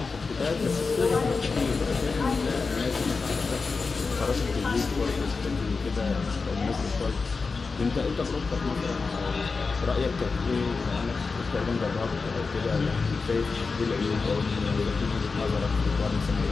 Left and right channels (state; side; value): quieter; right; 4.4 dB